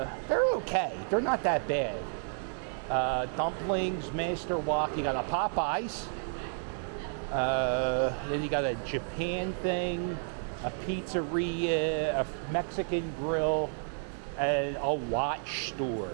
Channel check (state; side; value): silent; left; digital silence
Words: okay. They're not that bad. Dumplings, Master Wok. You got a Popeyes. Then you got a Japan thing, a pizzeria, a Mexican grill, and a watch